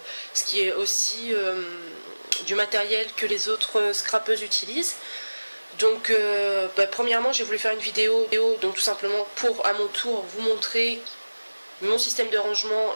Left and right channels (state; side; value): inverted; both; correlation -1.00